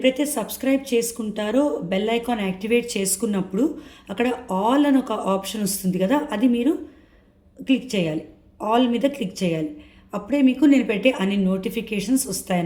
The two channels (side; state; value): both; identical; correlation 1.00